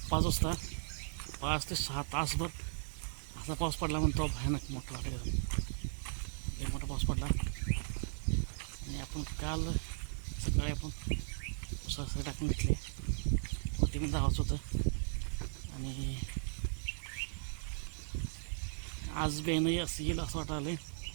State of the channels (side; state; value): left; silent; digital silence